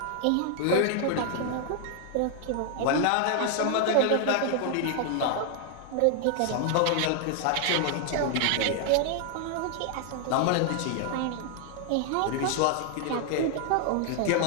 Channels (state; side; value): different; both; correlation 0.00